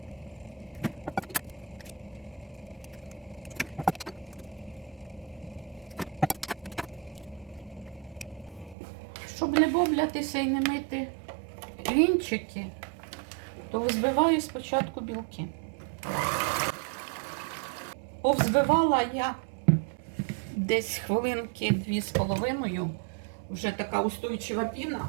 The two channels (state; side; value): drops out; left; at 8.8 s